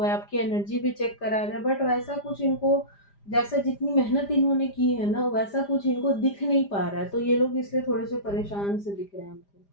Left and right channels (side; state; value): right; late; 5.0 ms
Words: आपकी एनर्जी भी चेक करा रहे हैं, बट वैसा कुछ इनको, जैसा जितनी मेहनत इन्होंने की है ना, वैसा कुछ इनको दिख नहीं पा रहा है। तो ये लोग इसलिए थोड़े से परेशान से दिख रहे हैं